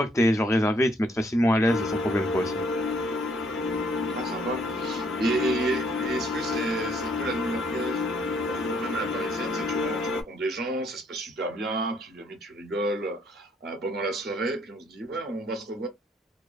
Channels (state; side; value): normal; both; correlation 0.67